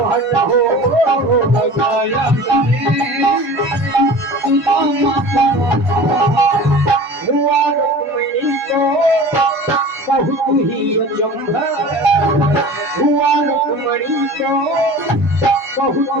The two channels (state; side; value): late; left; 1.5 ms